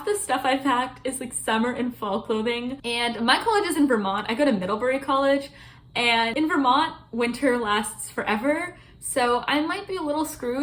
the stuff I packed is like summer and fall clothing. And my college is in Vermont. I go to Middlebury College, and in Vermont, winter lasts forever. So I might be a little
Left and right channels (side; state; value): both; identical; correlation 1.00